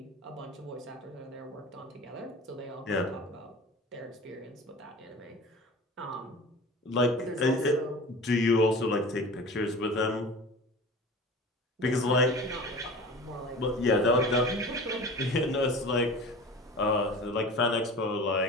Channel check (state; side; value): normal; both; correlation 0.37